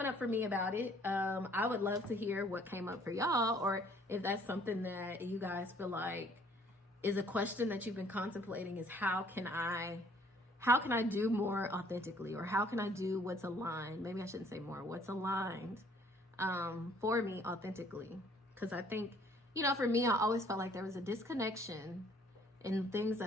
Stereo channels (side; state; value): both; normal; correlation 0.59